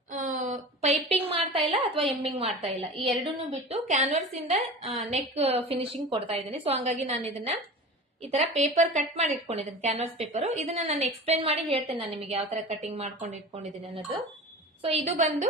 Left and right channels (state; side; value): normal; both; correlation 0.34